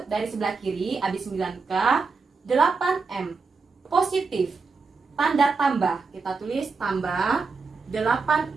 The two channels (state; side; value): quieter; left; 4.5 dB